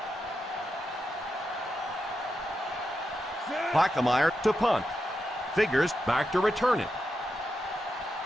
Plackemire to punt. Figures back to return it.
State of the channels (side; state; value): both; normal; correlation 0.87